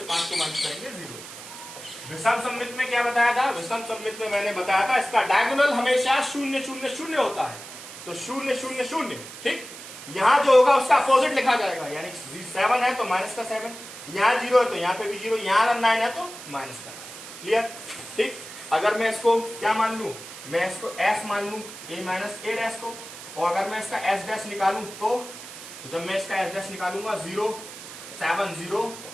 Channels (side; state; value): right; noise; hiss, 13 dB below the sound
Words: 5 को माइनस करेंगे 0। विषम सममित में क्या बताया था, विषम सममित में मैंने बताया था इसका डायगोनल हमेशा 0 0 0 होता है, तो 0 0 0, ठीक, यहाँ जो होगा उसका अपोजिट लिखा जाएगा, यानी 7 है तो माइनस का 7, यहाँ 0 है तो यहाँ पे भी 0, यहाँ अगर 9 है तो माइनस का 9, क्लियर, ठीक। अगर मैं इसको क्या मान लू, मैं इसको s मान लू, a माइनस a डैश को, और अगर मैं इसका s डैश निकालू तो जब मैं इसका s डैश निकालूंगा 0 7 0